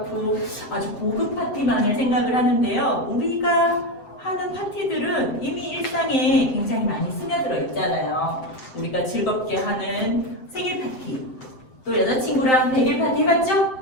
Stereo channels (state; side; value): late; right; 7.7 ms